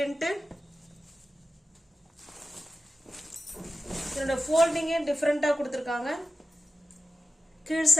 இதோட ஃபோல்டிங்கே டிஃப்ரெண்டா கொடுத்துருக்காங்க. கீழ்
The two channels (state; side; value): normal; both; correlation 0.94